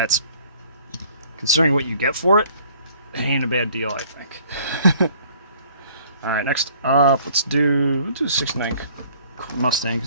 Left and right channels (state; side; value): inverted; both; correlation -0.56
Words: considering what you get for it, it ain't a bad deal, I think. All right, next up, let's do 69